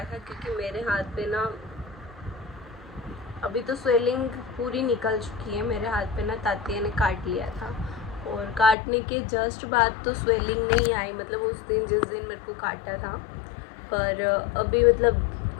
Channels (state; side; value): drops out; right; at 8.8 s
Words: था क्योंकि मेरे हाथ पे ना अभी तो स्वेलिंग पूरी निकल चुकी है। मेरे हाथ पे ना तातिया ने काट लिया था और काटने के जस्ट बाद तो स्वेलिंग नहीं आई, मतलब उस दिन जिस दिन मेरे को काटा था। पर अभी मतलब